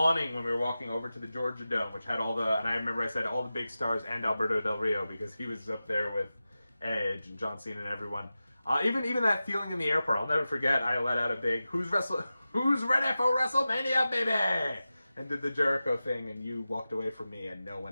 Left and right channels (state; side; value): inverted; both; correlation -0.94